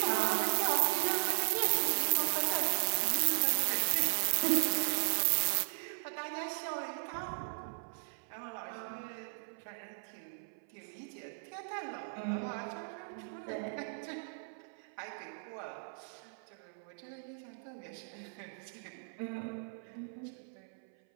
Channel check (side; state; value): left; silent; 53 dB below the other